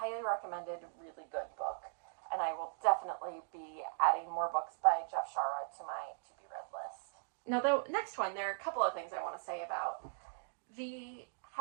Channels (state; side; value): silent; left; digital silence